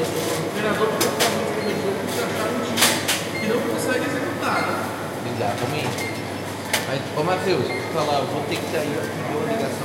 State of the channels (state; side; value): identical; both; correlation 1.00